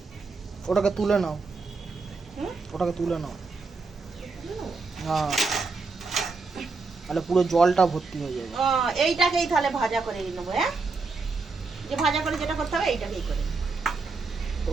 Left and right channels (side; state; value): left; quieter; 4.1 dB